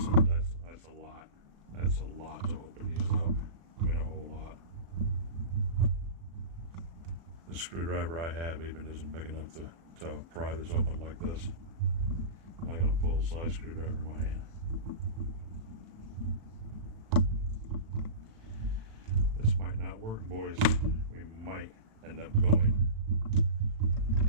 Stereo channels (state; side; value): late; left; 36 ms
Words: a lot. That's a lot to open these up. I mean, a whole lot. The screwdriver I have even isn't big enough to pry this open like this. I got a full-size screwdriver in my hand. This might not work, boys. We might end up going